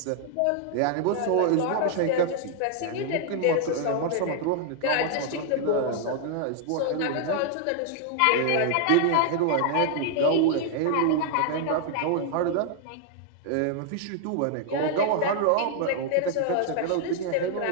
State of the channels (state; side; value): different; both; correlation 0.00